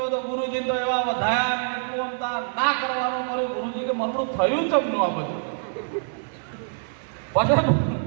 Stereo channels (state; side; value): silent; left; digital silence